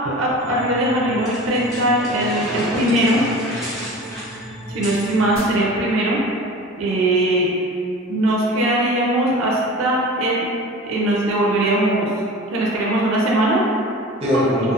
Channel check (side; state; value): both; normal; correlation 0.38